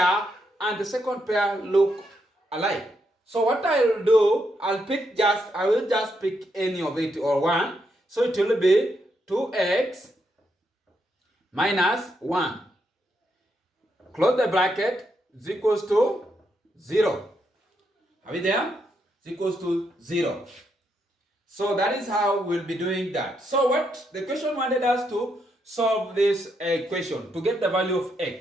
and the second pair look alike, so what I'll do, I will just pick any of it or one. So it will be 2x minus 1. Close the bracket, is equals to 0. Are we there? Is equals to 0. So that is how we'll be doing that. So what the question wanted us to solve this equation to get the value of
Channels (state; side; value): normal; both; correlation 0.79